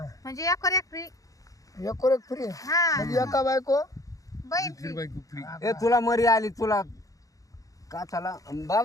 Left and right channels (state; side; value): late; right; 0.17 ms